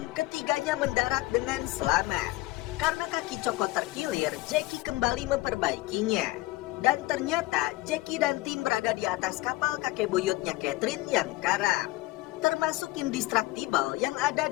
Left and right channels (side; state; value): right; quieter; 19.7 dB